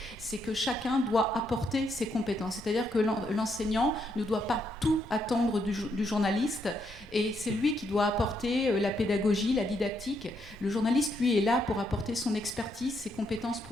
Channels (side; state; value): both; normal; correlation 0.76